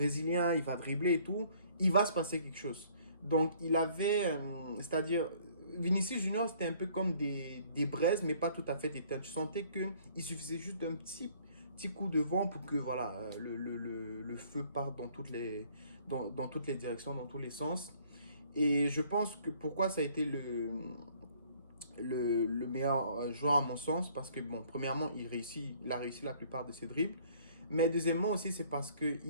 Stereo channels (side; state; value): both; inverted; correlation -0.59